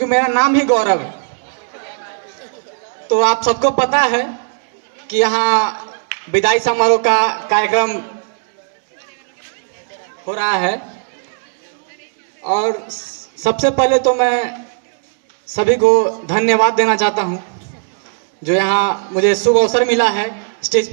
मेरा नाम ही गौरव है। तो आप सबको पता है कि यहाँ विदाई समारोह का कार्यक्रम हो रहा है, और सबसे पहले तो मैं सभी को धन्यवाद देना चाहता हूं जो यहाँ मुझे शुभ अवसर मिला है स्टेज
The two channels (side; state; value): left; silent; digital silence